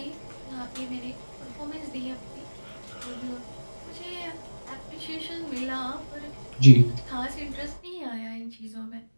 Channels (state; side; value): inverted; both; correlation -1.00